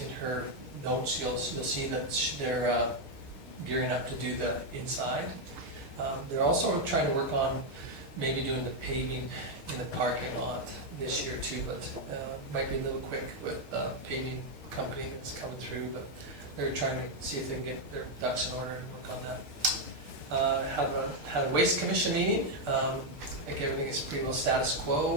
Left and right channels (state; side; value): late; left; 6.4 ms